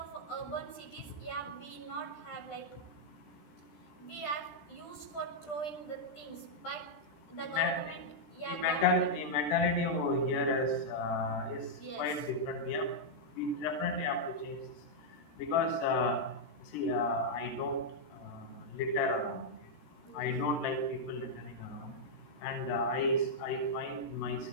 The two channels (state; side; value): late; right; 13 ms